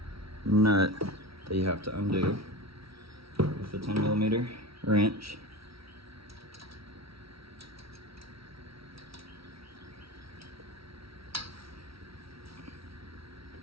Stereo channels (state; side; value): late; left; 0.75 ms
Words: nut that you have to undo with the 10mm wrench.